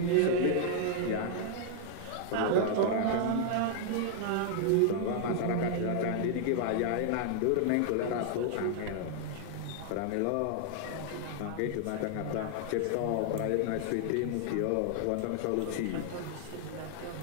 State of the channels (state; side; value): different; both; correlation 0.00